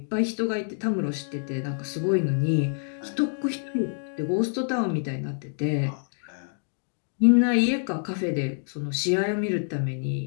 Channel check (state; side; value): silent; right; 60 dB below the other